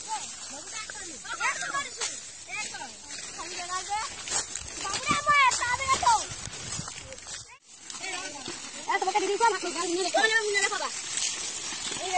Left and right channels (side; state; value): both; identical; correlation 1.00